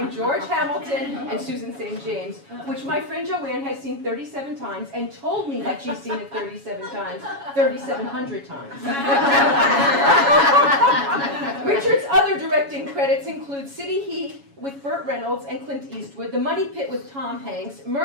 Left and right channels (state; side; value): late; left; 7.2 ms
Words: George Hamilton and Susan St. James, which my friend Joanne has seen 37 times and told me that she's seen it 37 times, 3,700 times. Richard's other directing credits include City Heat with Burt Reynolds and Clint Eastwood, The Money Pit with Tom Hanks,